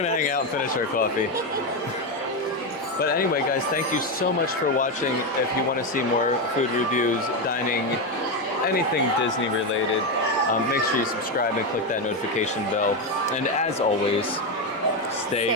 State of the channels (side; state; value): both; normal; correlation 0.10